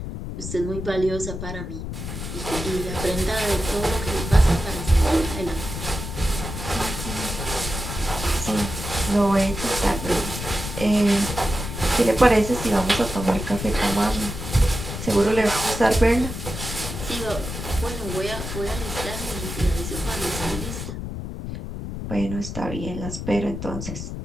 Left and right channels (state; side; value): noise; left; rumble, 7 dB below the sound